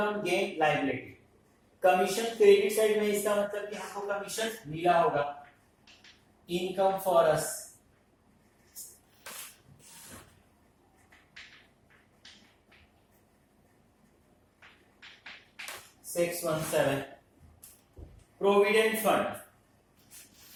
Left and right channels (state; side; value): identical; both; correlation 1.00